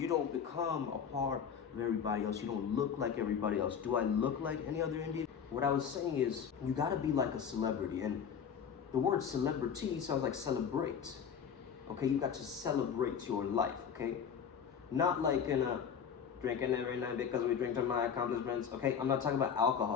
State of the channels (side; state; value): right; quieter; 7.4 dB